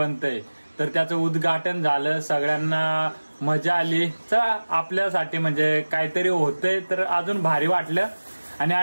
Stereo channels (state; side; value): inverted; both; correlation -1.00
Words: तर त्याचं उद्घाटन झालं. सगळ्यांना मजा आली. चला आपल्यासाठी म्हणजे काहीतरी होतंय तर अजून भारी वाटलं. आणि